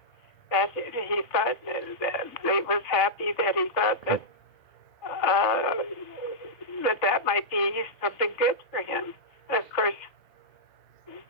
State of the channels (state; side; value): late; right; 2.3 ms